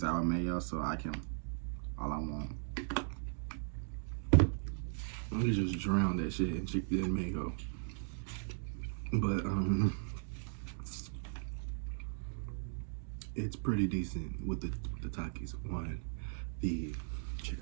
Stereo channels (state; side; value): silent; left; digital silence